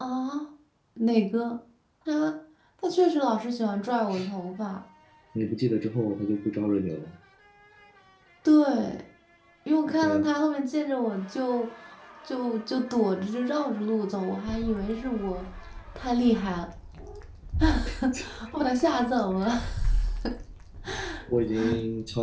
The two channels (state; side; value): identical; both; correlation 1.00